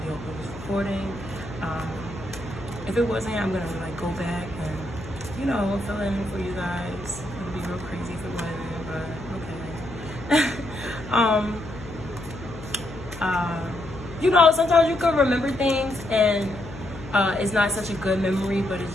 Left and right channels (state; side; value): noise; left; hum, 14 dB below the sound